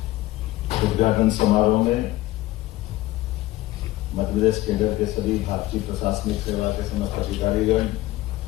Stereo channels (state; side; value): quieter; right; 17.1 dB